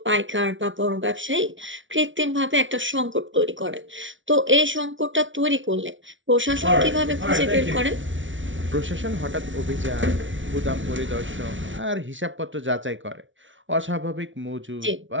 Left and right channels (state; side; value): late; left; 0.56 ms